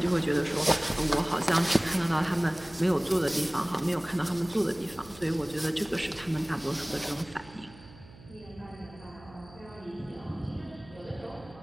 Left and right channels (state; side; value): noise; right; hum, 21 dB below the sound